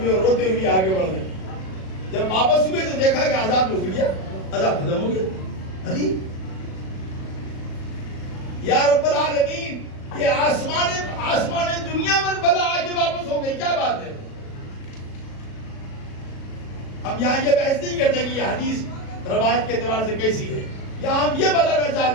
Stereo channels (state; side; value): late; right; 37 ms